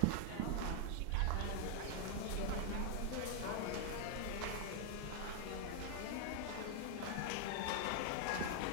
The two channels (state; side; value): different; both; correlation 0.00